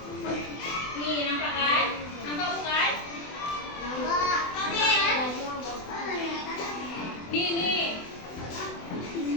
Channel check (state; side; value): late; right; 24 ms